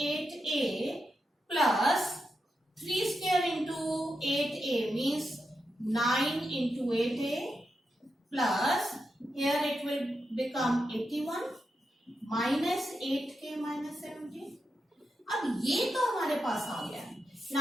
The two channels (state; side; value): normal; both; correlation 0.87